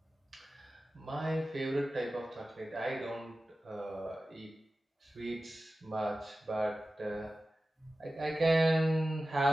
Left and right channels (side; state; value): both; normal; correlation 0.95